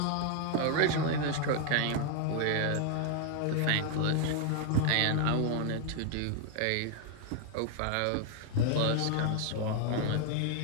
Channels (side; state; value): both; different; correlation 0.00